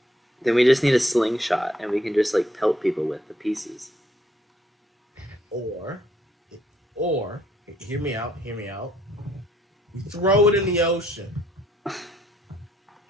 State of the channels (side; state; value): both; normal; correlation 0.68